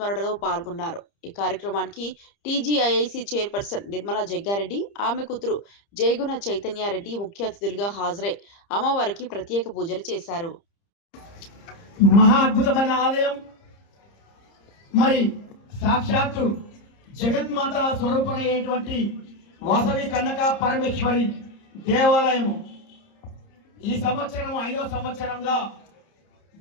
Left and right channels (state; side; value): late; right; 30 ms